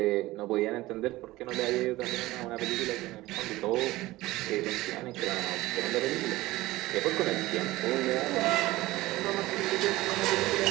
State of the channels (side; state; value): left; quieter; 18.3 dB